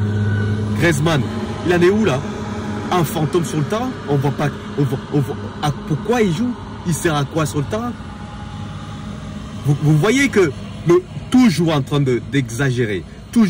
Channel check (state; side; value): identical; both; correlation 1.00